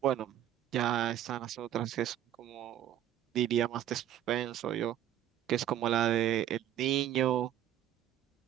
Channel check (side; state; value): left; quieter; 11.2 dB